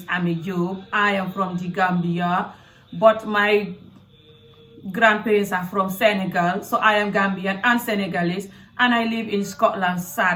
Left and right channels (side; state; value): both; identical; correlation 1.00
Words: Ami Job. I am from the Gambia, but my grandparents are from Senegal, so I am Gambian and Senegalese, and I live in Scotland,